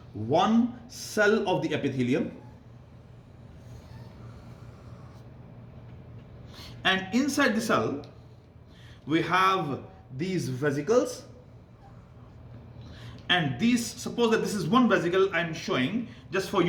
one cell of the epithelium, and inside the cell, we have these vesicles. And these, suppose that this is one vesicle I'm showing just for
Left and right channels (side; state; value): both; identical; correlation 1.00